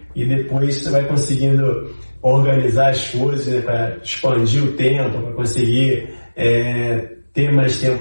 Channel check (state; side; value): inverted; both; correlation -1.00